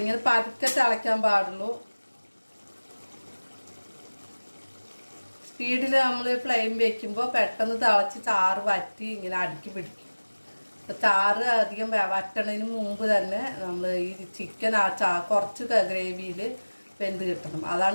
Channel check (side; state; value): both; inverted; correlation -1.00